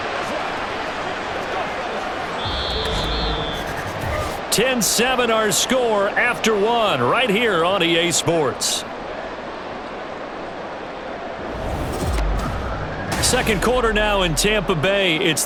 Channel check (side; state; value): both; identical; correlation 1.00